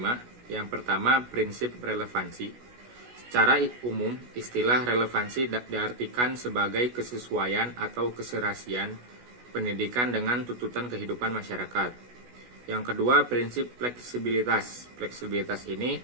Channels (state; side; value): late; left; 16 ms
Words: Yang pertama, prinsip relevansi. Secara umum, istilah relevansi diartikan sebagai kesesuaian atau keserasian pendidikan dengan tuntutan kehidupan masyarakat. Yang kedua, prinsip fleksibilitas. Fleksibilitas ini